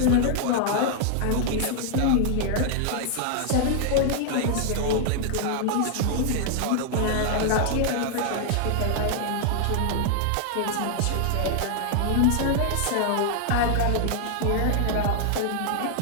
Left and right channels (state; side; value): different; both; correlation -0.01